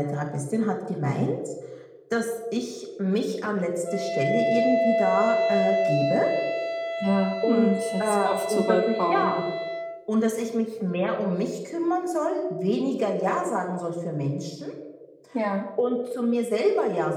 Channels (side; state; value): both; identical; correlation 1.00